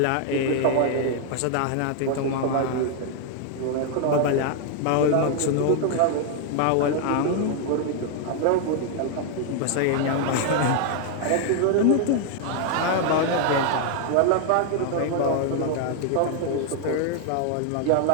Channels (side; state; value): both; different; correlation 0.00